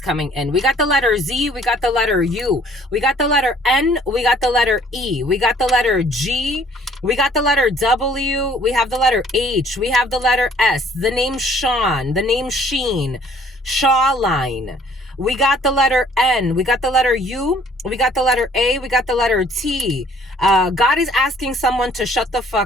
coming in. We got the letter Z. We got the letter U. We got the letter N. We got the letter E. We got the letter G. We got the letter W. We have the letter H. We have the letter S. The name Sean. The name Sheen. Shawline. We got the letter N. We got the letter U. We got the letter A. We got the letter T. God is asking someone to shut the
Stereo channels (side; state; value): both; normal; correlation 0.58